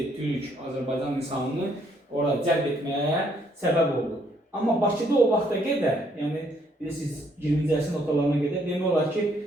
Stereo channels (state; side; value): normal; both; correlation 0.69